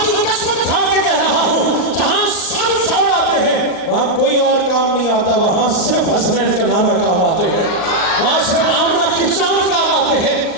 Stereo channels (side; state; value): right; late; 39 ms